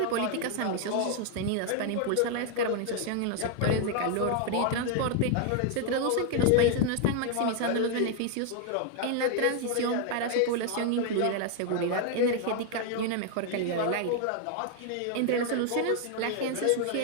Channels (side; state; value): both; different; correlation 0.00